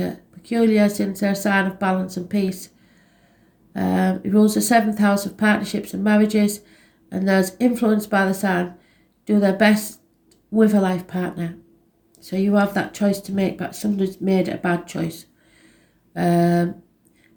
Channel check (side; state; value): both; identical; correlation 1.00